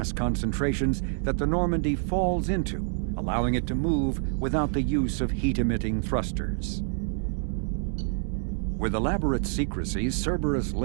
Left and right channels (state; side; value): silent; left; digital silence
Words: concentrations that the Normandy falls into, allowing it to move without the use of heat-emitting thrusters. With elaborate secrecy, Cerberus